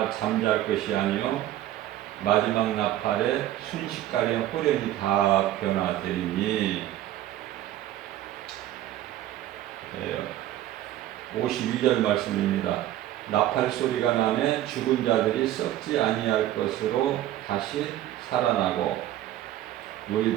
잠잘 것이 아니요 마지막 나팔에 순식간에 호련히 다 변화되리니. 52절 말씀입니다. 나팔 소리가 나매 죽은 자들이 썩지 아니할 것으로 다시 살아나고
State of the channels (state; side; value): quieter; left; 13.4 dB